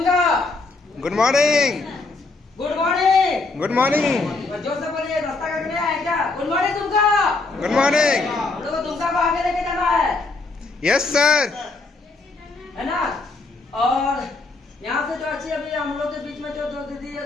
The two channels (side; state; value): right; quieter; 3.6 dB